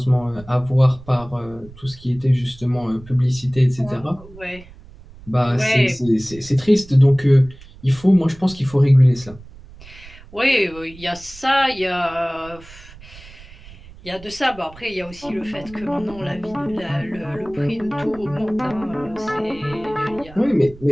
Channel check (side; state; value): right; noise; rumble, 20 dB below the sound